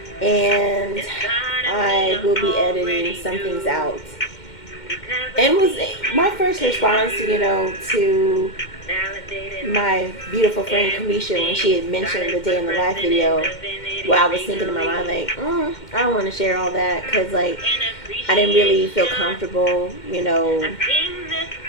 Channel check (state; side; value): late; right; 2.1 ms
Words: and I will be editing some things out. And was my first response, to my beautiful friend Kamisha when she had mentioned the day in the life video. Well, I was thinking in my mind like, I don't want to share all that, because like I didn't really feel comfortable,